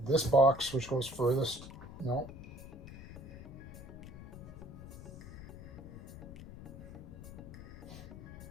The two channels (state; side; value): noise; left; rumble, 12 dB below the sound